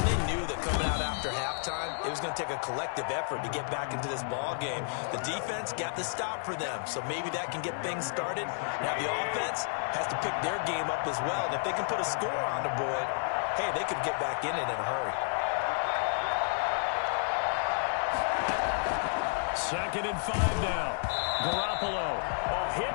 they knew that coming out after halftime, it was going to take a collective effort to get back into this ball game. The defense got the stop for them, so maybe that can get things started. Now the offense has to pick their game up as well. And if they can put a score on the board, hey, they could get back in it in a hurry. Second and 5 now. Garoppolo. A hit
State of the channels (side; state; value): right; silent; digital silence